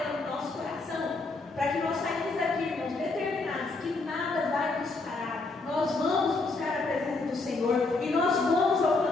no nosso coração. Para que nós saímos daqui, irmãos, determinados que nada vai nos parar. Nós vamos buscar a presença do Senhor e nós vamos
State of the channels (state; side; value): quieter; right; 3.6 dB